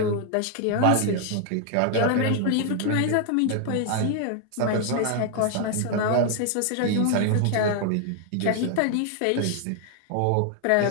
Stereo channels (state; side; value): different; both; correlation 0.00